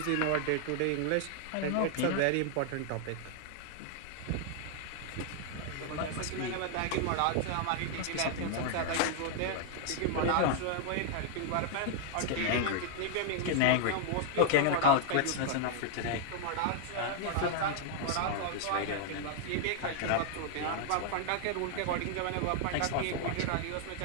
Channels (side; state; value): both; different; correlation 0.00